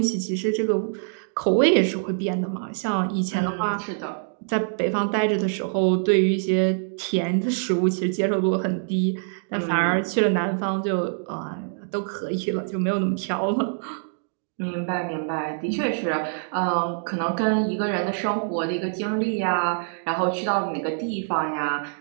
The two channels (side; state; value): left; silent; digital silence